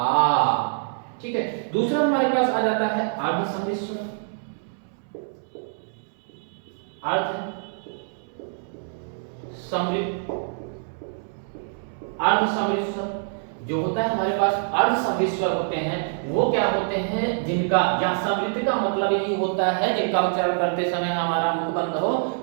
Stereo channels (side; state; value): left; silent; 62 dB below the other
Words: ठीक है, दूसरा हमारे पास आ जाता है अर्ध समृद्ध स्वर। अर्ध समृद्ध, अर्ध समृद्ध स्वर जो होता है हमारे पास, अर्ध समृद्ध स्वर होते हैं वो क्या होते हैं, जिनका, या समृद्ध का मतलब यही होता है जिनका उच्चारण करते समय हमारा मुख बंद हो,